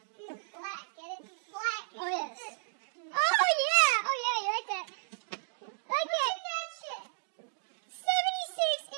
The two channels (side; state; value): left; silent; digital silence